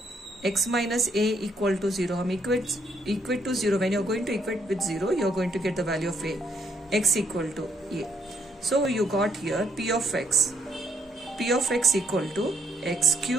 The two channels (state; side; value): normal; both; correlation 0.71